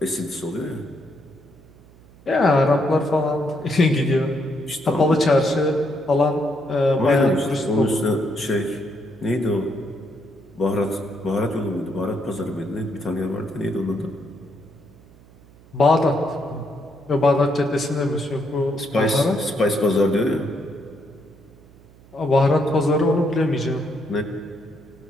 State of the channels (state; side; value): noise; right; hum, 25 dB below the sound